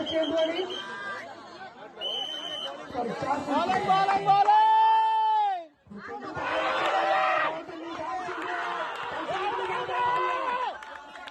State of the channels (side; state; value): both; identical; correlation 1.00